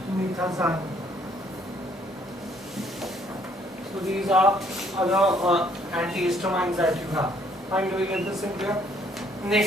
So these are other antihistamines that you have. Fine, do we get this in clear?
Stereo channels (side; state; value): both; normal; correlation 0.65